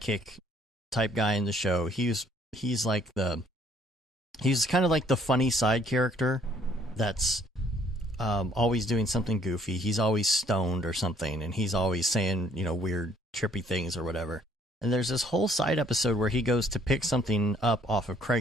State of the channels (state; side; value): normal; both; correlation 0.63